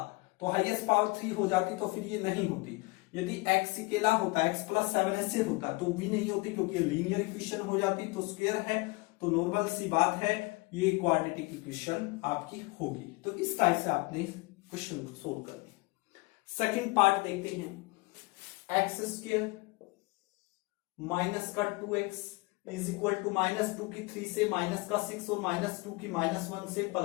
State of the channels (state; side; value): quieter; right; 25.0 dB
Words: तो हाईएस्ट पावर 3 हो जाती, तो फिर ये नहीं होती। यदि x अकेला होता, x + 7 ऐसे होता तो भी नहीं होती, क्योंकि लीनियर इक्वेशन हो जाती। तो स्क्वायर है तो नॉर्मल सी बात है, ये क्वाड्रेटिक इक्वेशन आपकी होगी। तो इस टाइप से आपने क्वेश्चन को सोल्व करना है। सेकंड पार्ट देखते हैं, x² माइनस का 2x इज इक्वल टू -2 की 3 से माइनस का 6 और -2 की -1 से